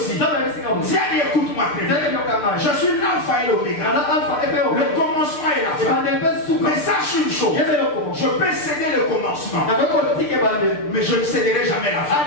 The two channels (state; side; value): late; right; 6.7 ms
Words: Tiens, écoute-moi très bien. Je suis l'alpha et l'oméga. Le commencement et la fin. Mais sache une chose. Je peux céder le commencement. Mais je ne céderai jamais la fin.